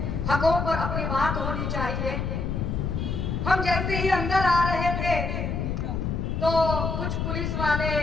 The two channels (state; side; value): noise; left; rumble, 2 dB below the sound